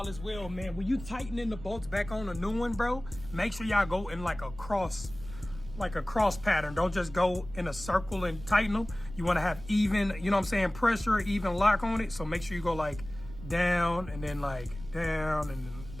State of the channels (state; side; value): noise; right; rumble, 14 dB below the sound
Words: as well, man. When you tightening the bolts back on a new one, bro, make sure y'all go in like a cross pattern. Don't just go in a circle and tighten them. You want to have even, you know what I'm saying, pressure, even lock on it. So make sure you go like down and then like down and then